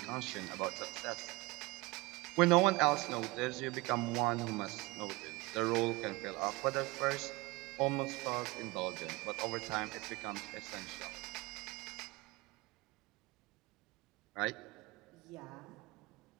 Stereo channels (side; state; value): left; quieter; 23.0 dB